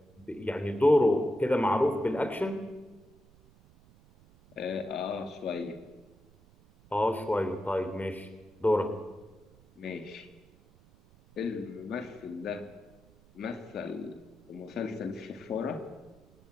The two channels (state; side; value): noise; right; rumble, 27 dB below the sound